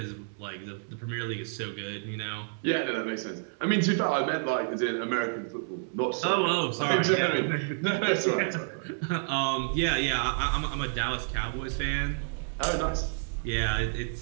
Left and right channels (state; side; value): silent; left; digital silence